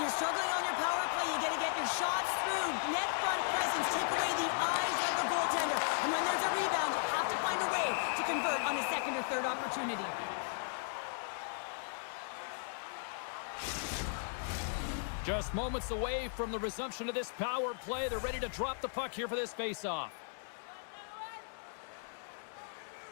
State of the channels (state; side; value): silent; right; digital silence